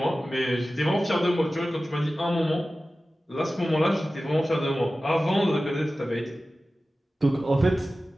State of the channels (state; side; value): normal; both; correlation 0.95